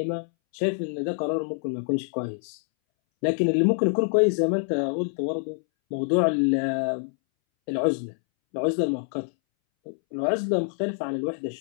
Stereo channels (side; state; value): right; silent; 61 dB below the other